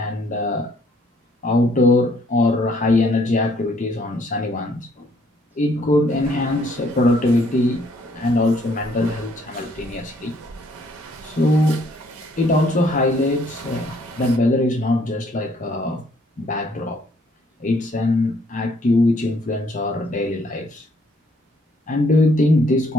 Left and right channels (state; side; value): normal; both; correlation 0.65